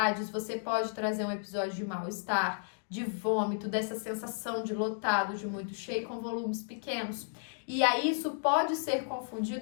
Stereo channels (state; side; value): silent; right; digital silence